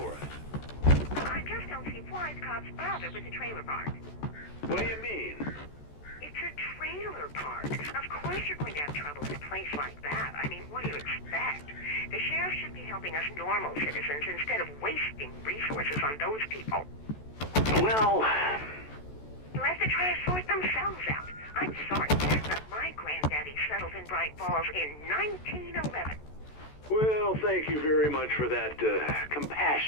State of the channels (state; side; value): late; right; 14 ms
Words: us? I just don't see why the cops bother with the trailer park. What do you mean? It's a trailer park. Of course you're going to have trouble in a place like that. I mean, what do you expect? The sheriff should be helping us normal citizens instead of wasting resources on those people. Well... Let the trash sort themselves out. I'm sorry, but my granddaddy settled in Bright Falls in 1911. Well, thank you very much for that